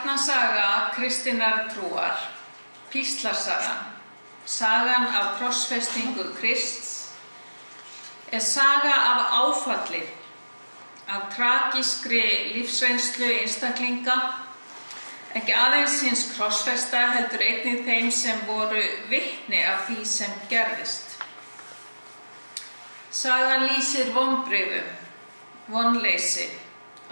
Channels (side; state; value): both; inverted; correlation -1.00